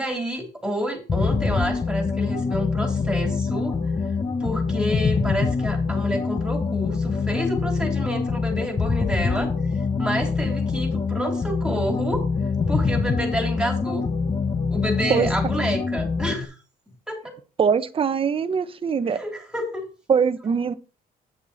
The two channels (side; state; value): both; normal; correlation 0.75